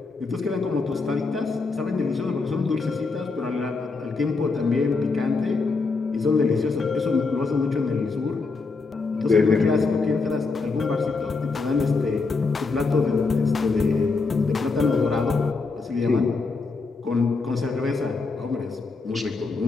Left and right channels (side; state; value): right; quieter; 4.1 dB